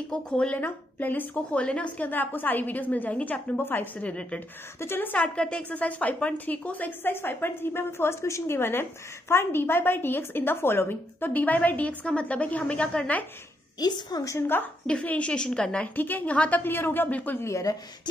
को खोल लेना, प्लेलिस्ट को खोल लेना। उसके अंदर आपको सारी वीडियोस मिल जाएंगी चैप्टर नंबर 5 से रिलेटेड। तो चलो स्टार्ट करते हैं एक्सरसाइज 5.3 को। सो एक्सरसाइज 5.3 में हमें फर्स्ट क्वेश्चन गिवन है, find dy by dx in the following. तो dy by dx का मतलब है कि हमें क्या करना है, इस फंक्शन का डिफरेंशिएशन करना है। ठीक है, यहां तक क्लियर हो गया? बिल्कुल क्लियर है।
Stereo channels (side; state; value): both; normal; correlation 0.78